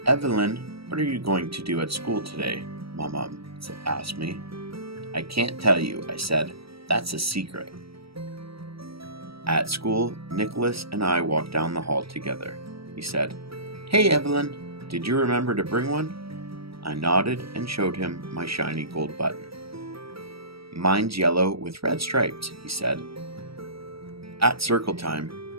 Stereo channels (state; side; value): late; left; 0.76 ms